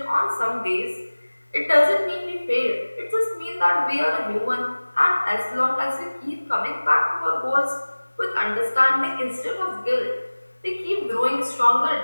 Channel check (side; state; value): both; inverted; correlation -1.00